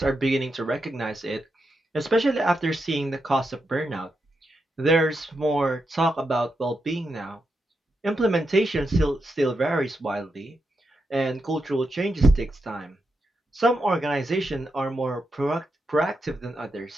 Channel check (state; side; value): normal; both; correlation 0.85